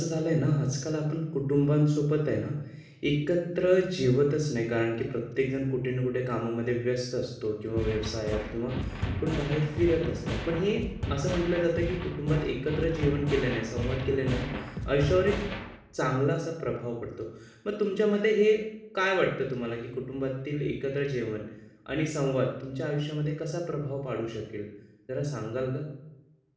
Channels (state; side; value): identical; both; correlation 1.00